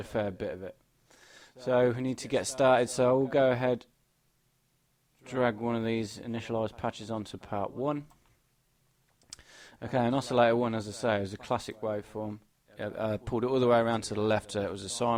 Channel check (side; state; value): both; identical; correlation 1.00